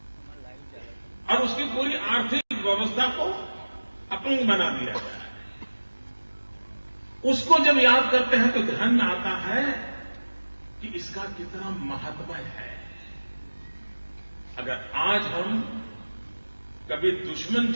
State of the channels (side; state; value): both; inverted; correlation -1.00